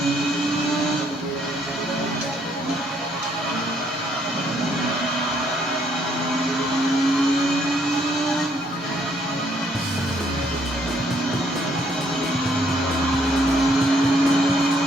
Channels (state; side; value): normal; both; correlation 0.68